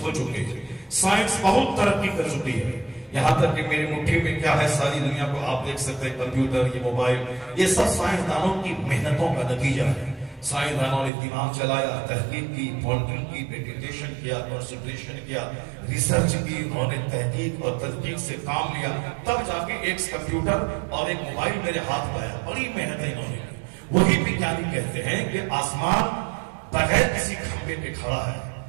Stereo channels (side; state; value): left; drops out; at 11.1 s